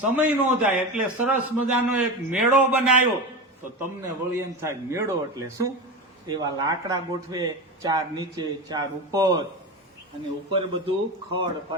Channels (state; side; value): normal; both; correlation 0.23